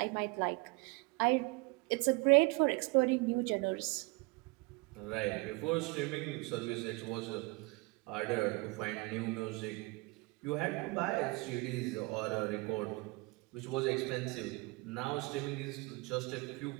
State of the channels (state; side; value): quieter; left; 26.2 dB